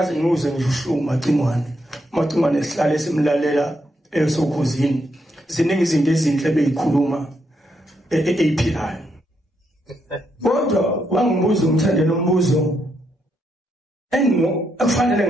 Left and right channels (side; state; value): both; normal; correlation 0.79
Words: ngiuze ngisho macingwane esihlale simlalela esokhuzini ziningi izinto ezinhle beyikhuluma ephilayo kodwa wangibuza umthandelo umbuzo akufanele